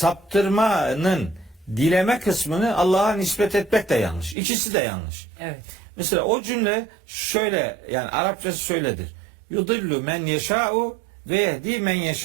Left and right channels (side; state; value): left; drops out; at 4.4 s